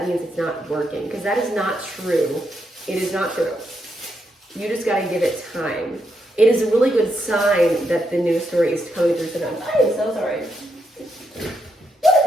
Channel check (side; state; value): both; normal; correlation 0.81